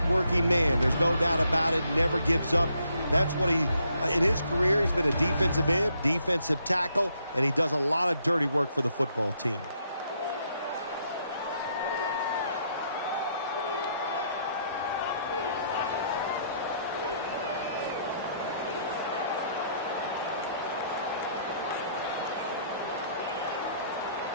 man. There's no doubt about it. Never gives up. That's what in his career, he's been a defensive end, defensive tackle, and he does a lot of dirty work for the football team.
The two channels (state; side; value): inverted; both; correlation -0.71